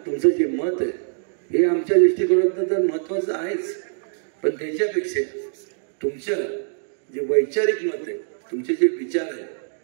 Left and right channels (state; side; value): silent; left; digital silence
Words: तुमचं जे मत आहे हे आमच्या दृष्टिकोनातून तर महत्त्वाचं आहेच पण त्याच्यापेक्षा तुमचं जे वैचारिक मत आहे तुमचे जे विचार आहे